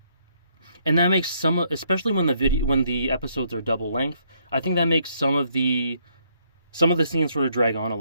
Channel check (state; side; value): inverted; both; correlation -0.71